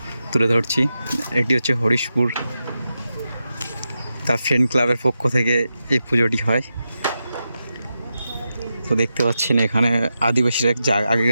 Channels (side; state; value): both; inverted; correlation -0.89